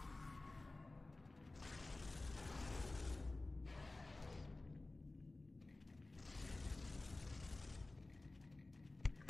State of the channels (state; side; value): quieter; right; 3.1 dB